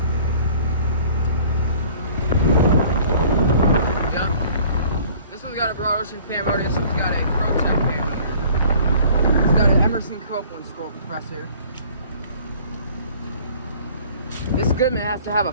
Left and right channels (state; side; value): inverted; both; correlation -0.51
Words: Yep. This one's got a broad ocean fan motor. This one's got a Protec fan motor. Got an Emerson Copeland scroll compressor. This Goodman has to have a